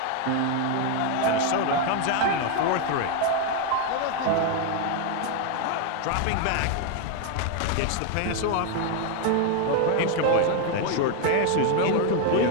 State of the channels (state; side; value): different; both; correlation 0.01